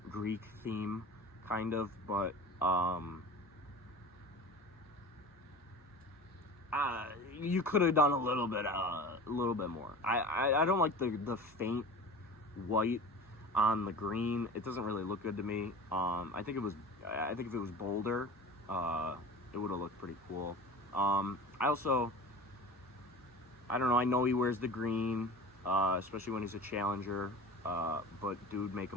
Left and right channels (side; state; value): both; normal; correlation 0.36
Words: Greek theme, kind of, but you could have done a little bit more. I don't like the faint white on the green. It doesn't really look good to me. I think if it was bolder, it would have looked pretty cool. I don't know. I know he wears the green, especially when he's a challenger. But dude, make